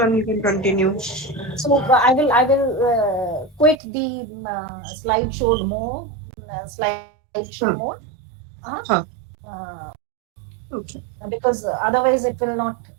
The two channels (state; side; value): drops out; left; at 3.8 s